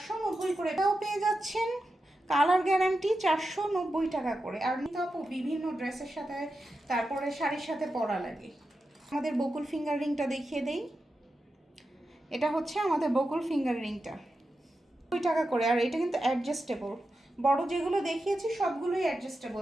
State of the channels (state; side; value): normal; both; correlation 0.90